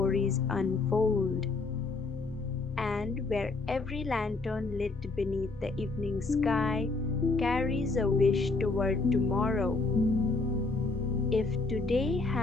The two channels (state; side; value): quieter; right; 3.7 dB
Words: unfold, and where every lantern lit beneath the evening sky carries a wish toward tomorrow. If today